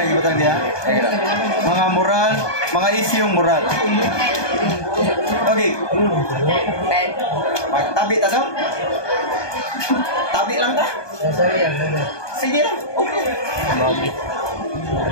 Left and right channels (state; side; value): late; right; 1.2 ms